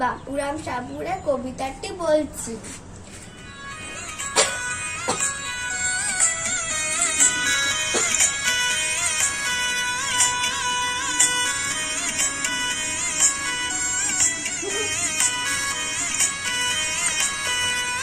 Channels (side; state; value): both; identical; correlation 1.00